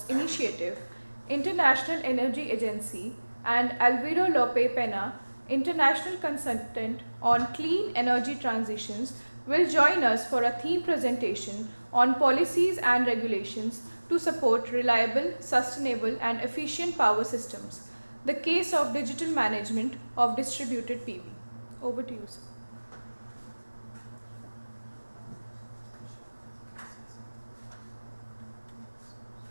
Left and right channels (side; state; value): both; inverted; correlation -1.00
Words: Initiative, International Energy Agency, and Alvaro Lope Pena, International Consultant on Clean Energy Transitions, will join us for a theme presentation on policies and regulations to support reliable, sustainable and efficient power systems, the case of digital management of distributed PV. Over to you, sir.